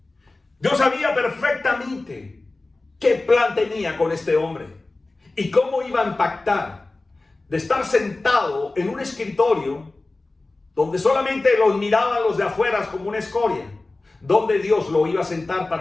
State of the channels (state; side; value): quieter; right; 3.2 dB